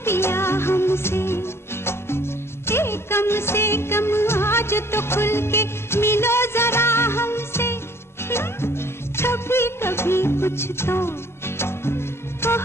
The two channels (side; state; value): right; late; 0.12 ms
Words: पिया हमसे। कम से कम आज तो खुल के मिलो जरा हमसे। कभी कभी कुछ तो